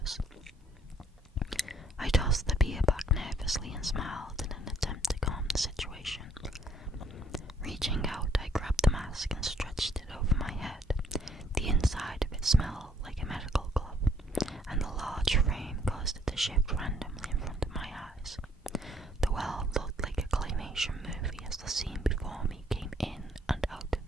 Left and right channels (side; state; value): both; normal; correlation 0.65